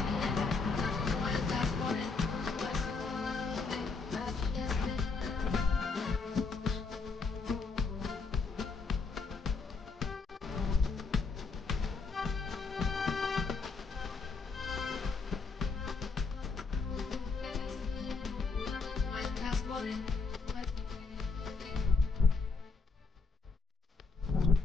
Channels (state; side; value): quieter; right; 4.3 dB